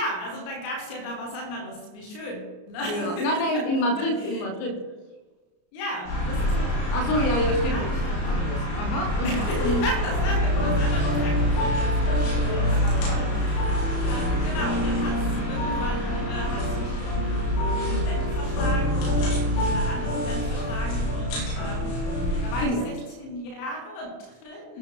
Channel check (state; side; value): late; right; 33 ms